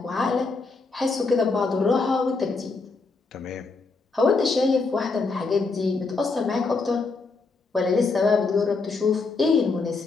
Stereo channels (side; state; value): right; quieter; 4.0 dB